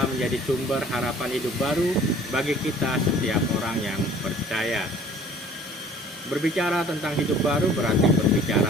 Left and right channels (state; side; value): normal; both; correlation 0.51